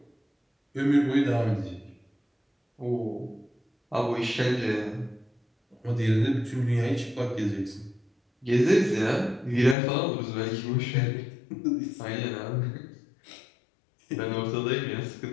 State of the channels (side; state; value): right; drops out; at 9.8 s